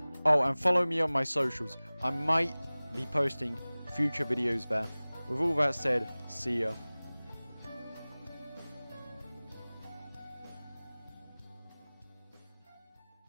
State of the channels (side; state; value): both; inverted; correlation -0.99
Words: Oh, and follow me on my socials. I might be posting future videos there. With all that said, see ya.